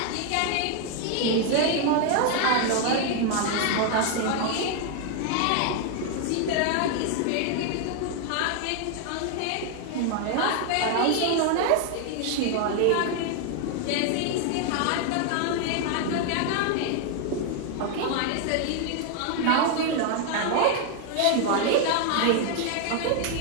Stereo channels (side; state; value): both; different; correlation 0.01